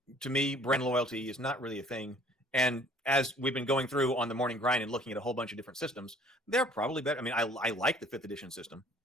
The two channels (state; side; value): normal; both; correlation 0.55